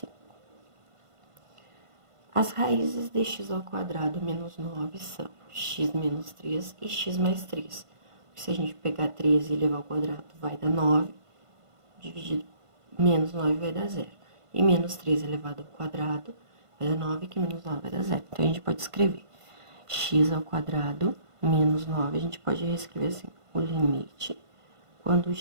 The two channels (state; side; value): late; left; 1.5 ms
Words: As raízes de x ao quadrado menos 9 são x menos 3 e x mais 3. Se a gente pegar 3 e elevar ao quadrado, vai dar 9, dividido menos 9 vai dar 0. E menos 3 elevado ao quadrado vai dar 9, que menos 9 vai dar 0. Então, a gente pode escrever x ao quadrado menos 9, a gente pode reescrever assim, o limite quando